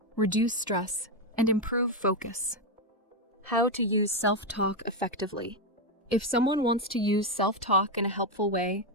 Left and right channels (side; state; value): both; normal; correlation 0.06